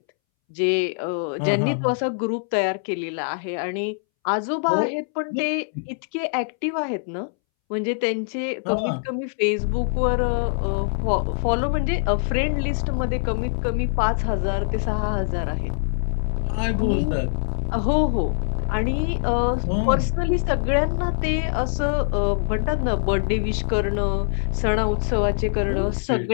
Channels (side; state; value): right; silent; 63 dB below the other